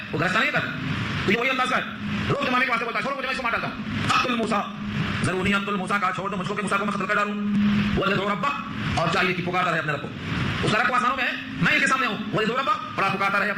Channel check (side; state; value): both; identical; correlation 1.00